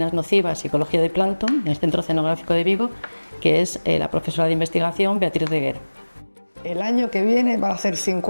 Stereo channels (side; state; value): both; inverted; correlation -1.00